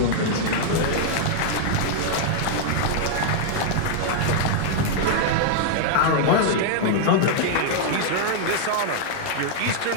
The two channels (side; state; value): both; different; correlation -0.01